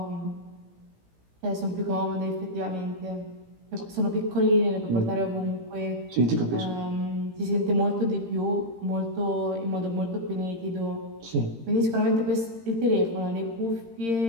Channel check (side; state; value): left; late; 18 ms